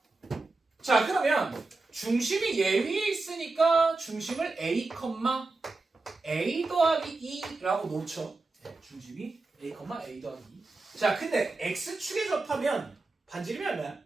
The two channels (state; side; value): quieter; left; 3.4 dB